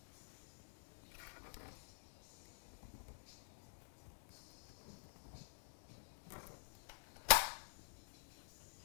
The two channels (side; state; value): right; silent; digital silence